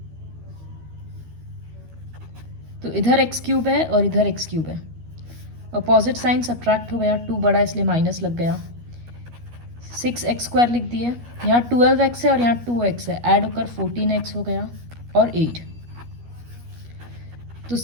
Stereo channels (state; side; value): late; left; 12 ms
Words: तो इधर एक्स क्यूब है और इधर एक्स क्यूब है, अपोजिट साइन सब्ट्रैक्ट हो गया, 2 बड़ा इसलिए माइनस लग गया। 6x² लिख दिए, यहाँ 12x है और यहाँ 2x है, ऐड होकर 14x हो गया और 8। तो